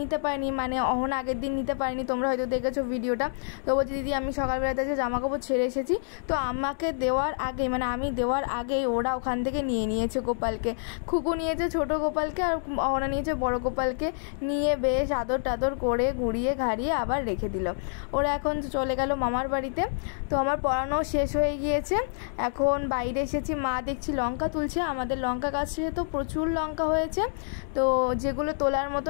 পারিনি, মানে অহনা আগের দিন নিতে পারিনি, তোমরা হয়তো দেখেছো ভিডিওটা। তো বলছে দিদি আমি সকালবেলাতে যে জামা কাপড় ছেড়ে এসেছি, তো আমাকে দেওয়ার আগে মানে আমি দেওয়ার আগেই ওরা ওখান থেকে নিয়ে নিয়েছে গোপালকে। খুকু নিয়েছে ছোট গোপালকে আর অহনা নিয়েছে বড় গোপালকে, নিয়ে বেশ আদর টাদর করে ঘুরিয়ে ঘাড়িয়ে আবার রেখে দিল। ওরা এখন চলে গেল মামার বাড়িতে। তো আমার পড়ানো শেষ হয়ে গিয়েছে, এখন বাইরে এসেছি। মা দেখছি লঙ্কা তুলছে, আমাদের লঙ্কা গাছে তো প্রচুর লঙ্কা হয়েছে। তো যেগুলো তোলার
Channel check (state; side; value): silent; right; digital silence